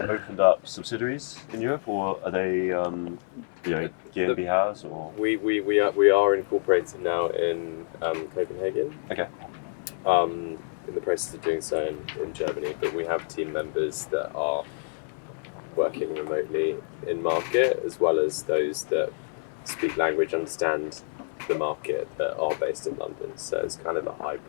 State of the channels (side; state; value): right; silent; digital silence